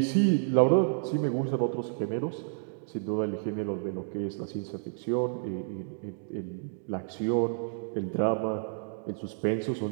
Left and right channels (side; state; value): left; silent; digital silence